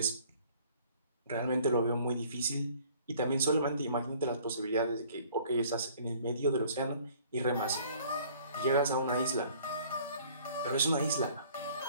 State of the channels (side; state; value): both; inverted; correlation -0.55